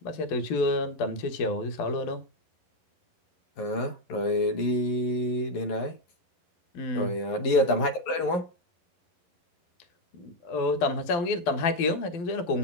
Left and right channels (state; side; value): late; right; 11 ms